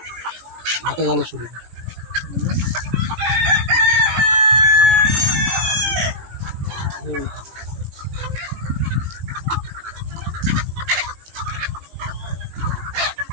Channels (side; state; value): left; late; 18 ms